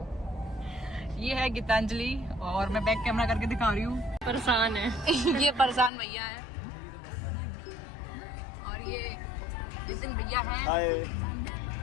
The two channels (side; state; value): right; drops out; at 5.9 s